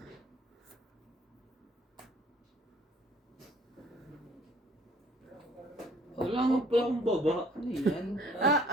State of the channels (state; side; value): normal; both; correlation 0.57